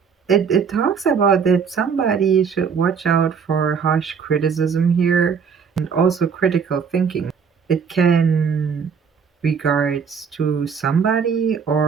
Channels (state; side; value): quieter; left; 6.4 dB